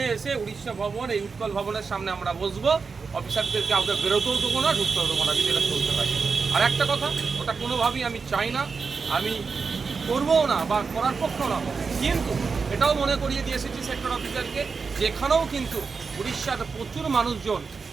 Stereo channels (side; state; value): left; quieter; 5.0 dB